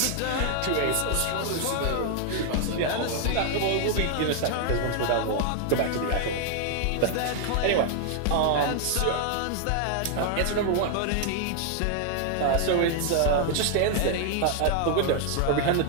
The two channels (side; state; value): both; different; correlation 0.00